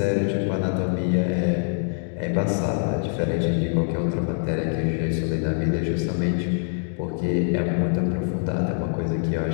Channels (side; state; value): right; silent; 62 dB below the other